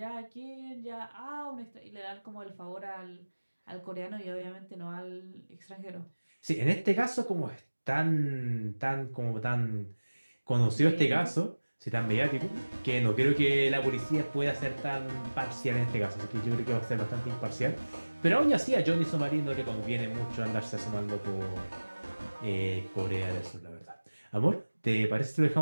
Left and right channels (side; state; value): both; inverted; correlation -1.00